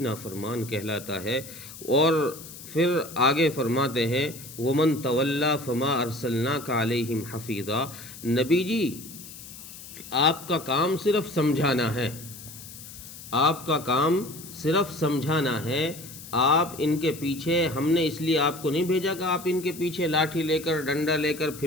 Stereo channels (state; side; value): noise; left; hiss, 15 dB below the sound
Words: کہلاتا ہے۔ اور پھر آگے فرماتے ہیں، وَمَن تَوَلَّا فَمَا أَرْسَلْنَاكَ عَلَيْهِمْ حَفِيظًا، نبی جی آپ کا کام صرف سمجھانا ہے، آپ کا کام صرف سمجھانا ہے، آپ ان کے پیچھے، ہم نے اس لیے آپ کو نہیں بھیجا کہ آپ ان کے پیچھے لاٹھی لے کر ڈنڈا لے کر